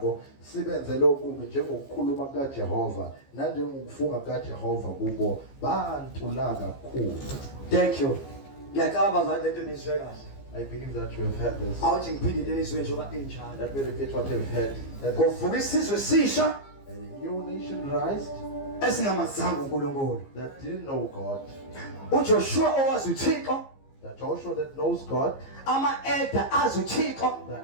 sibenzele okubi njengokukhuluma kukaJehova nanjengokufunga kukaJehova kubo bantula kakhulu. Thank you. Ngiyacabanga bazalwane lento nizwe kahle. I believe that you have heard this. Awuthi ngiphinde njengoba enjalo. Let me repeat what you've heard. Kuvuka isizwe sisha. A new ancientized, esingamazanga uNkulunkulu. that didn't know God. uJoshua owazi uThixo, The Joshua that knows God, ama-elder azi uThixo the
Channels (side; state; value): right; late; 15 ms